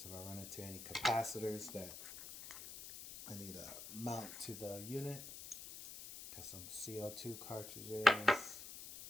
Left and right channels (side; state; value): left; noise; hiss, 11 dB below the sound